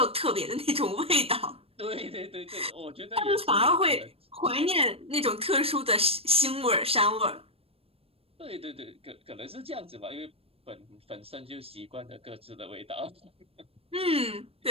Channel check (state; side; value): late; left; 0.28 ms